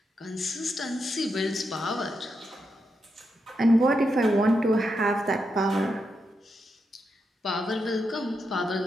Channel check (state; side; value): normal; both; correlation 0.84